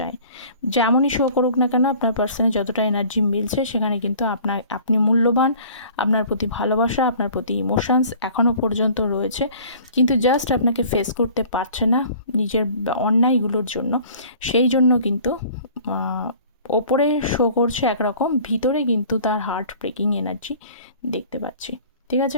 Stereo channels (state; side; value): inverted; both; correlation -0.49